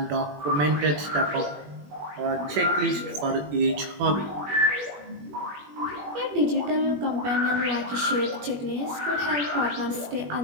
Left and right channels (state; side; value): late; left; 21 ms